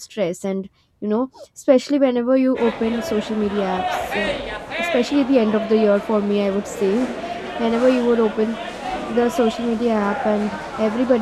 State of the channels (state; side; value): identical; both; correlation 1.00